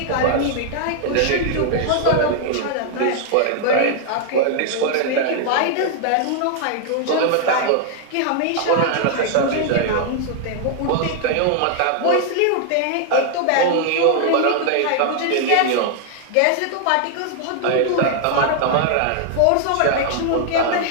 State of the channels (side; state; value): both; different; correlation 0.00